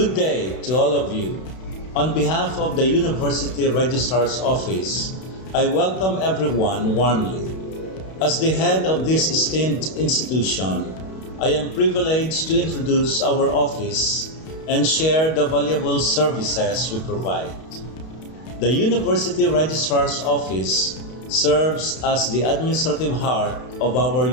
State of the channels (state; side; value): late; right; 32 ms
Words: day to all of you. On behalf of the University Registrar's Office, I welcome everyone warmly. As the head of this esteemed institution, I am privileged to introduce our office and share the valuable services we provide. The University Registrar's Office serves as the administrative heart of our